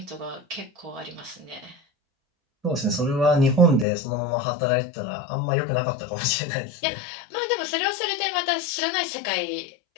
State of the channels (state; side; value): drops out; right; at 3.9 s